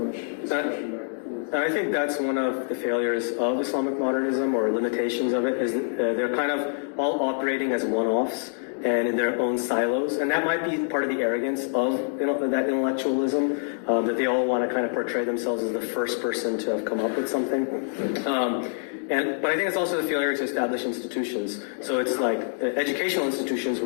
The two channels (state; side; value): silent; right; digital silence